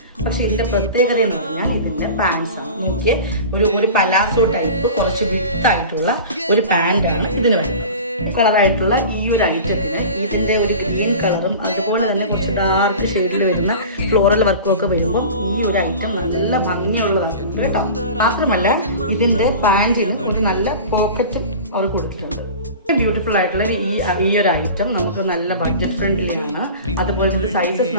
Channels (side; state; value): both; inverted; correlation -0.36